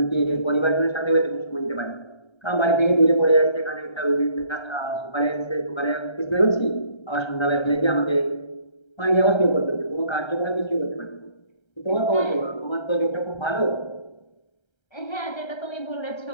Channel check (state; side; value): late; right; 1.3 ms